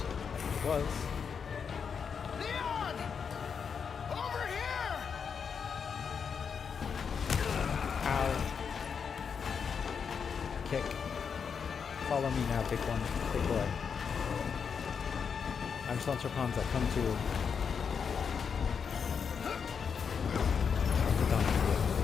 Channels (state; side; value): quieter; right; 6.4 dB